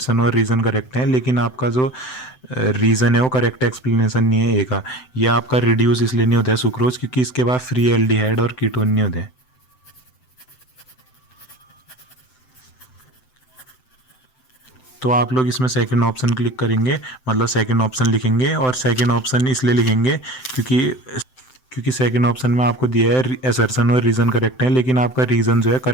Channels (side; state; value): right; late; 7.8 ms